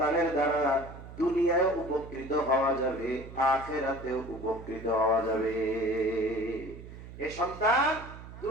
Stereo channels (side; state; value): right; noise; hum, 14 dB below the sound